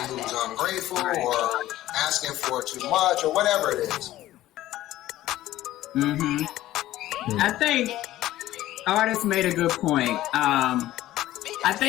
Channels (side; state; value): right; quieter; 15.0 dB